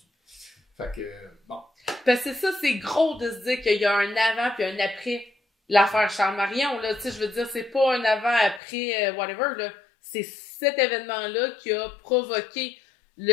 Fait que, bon. Parce que ça, c'est gros de se dire qu'il y a un avant puis un après l'affaire Charles Marion, là. Tu sais, je veux dire, c'est pas un avant, après, whatever, là. C'est cet événement-là qui a provoqué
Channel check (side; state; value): right; drops out; at 8.6 s